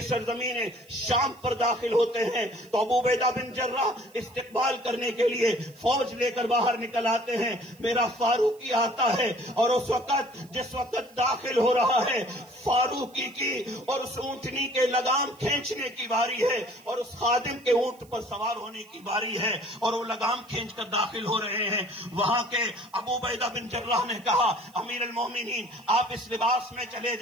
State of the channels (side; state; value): right; noise; hiss, 28 dB below the sound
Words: سرزمین شام پر داخل ہوتے ہیں تو ابو عبیدہ بن جراح استقبال کرنے کے لیے فوج لے کر باہر نکل آتے ہیں، میرا فاروقی آتا ہے اور اس وقت جس وقت داخل ہو رہا ہے فاروقی کی اور اس اونٹنی کے لگام کھینچنے کی باری ہے اور اس خادم کے اونٹ پر سوار ہونے کی باری ہے اور وہ لگام کھینچ کر داخل ہو رہے ہیں۔ وہاں کے ابو عبیدہ بن جراح نے کہا امیر المومنین آپ اس لباس میں چلے